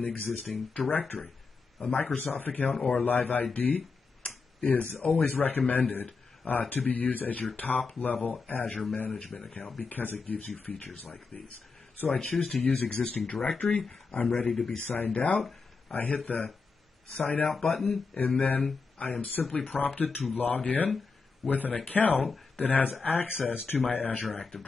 existing directory. A Microsoft account or Live ID is always recommended to be used as your top-level Azure management account because it gives you features like these. So I choose to use existing directory. I'm ready to be signed out. I hit the sign out button, and then I am simply prompted to log in with an account that has access to my Azure Active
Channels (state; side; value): quieter; right; 4.6 dB